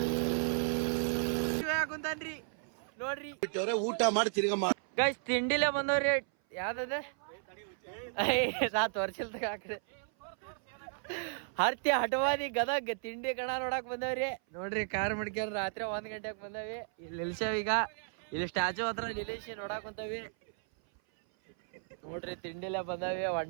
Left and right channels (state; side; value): silent; left; 55 dB below the other